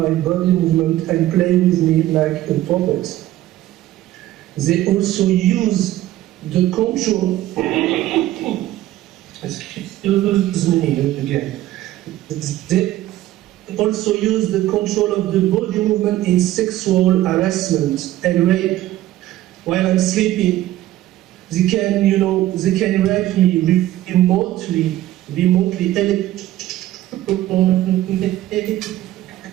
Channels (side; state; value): left; quieter; 14.6 dB